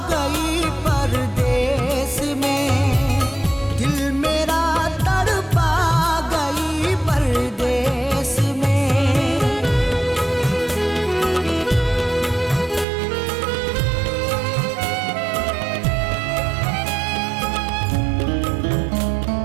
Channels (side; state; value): left; drops out; at 12.9 s